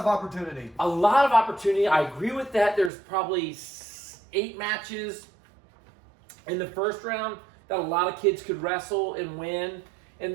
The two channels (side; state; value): left; drops out; at 2.9 s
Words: opportunity. A lot of opportunity. I agree with that. There's probably 8 matches in the first round that a lot of kids could wrestle and win. And